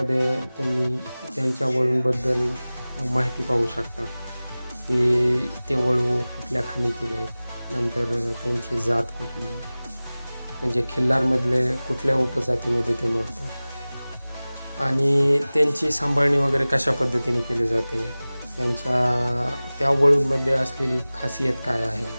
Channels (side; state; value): both; inverted; correlation -0.98